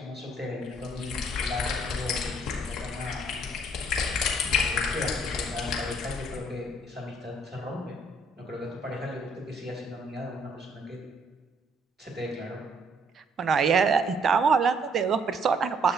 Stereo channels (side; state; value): both; normal; correlation 0.65